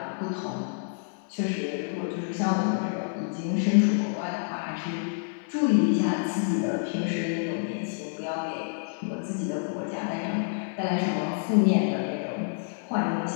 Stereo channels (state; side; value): silent; right; digital silence